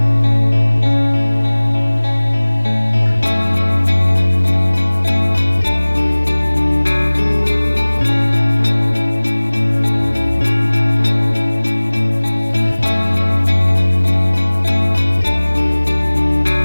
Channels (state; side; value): inverted; both; correlation -1.00